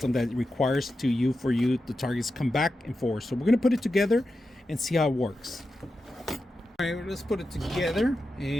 that it requires for you the targets come back and forth. So we're going to put it together and see how it works. All right, let's put it together,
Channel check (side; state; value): both; normal; correlation 0.90